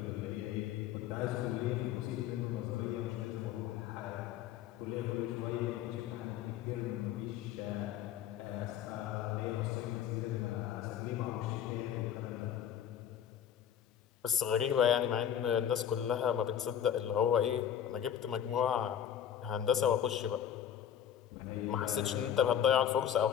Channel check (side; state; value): right; quieter; 9.6 dB